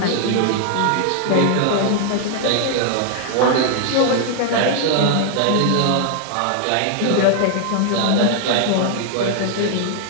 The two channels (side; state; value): both; different; correlation 0.00